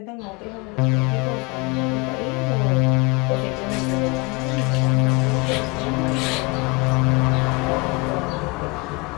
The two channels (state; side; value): quieter; right; 27.6 dB